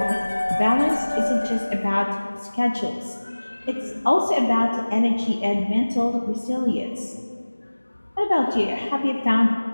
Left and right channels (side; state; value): both; inverted; correlation -1.00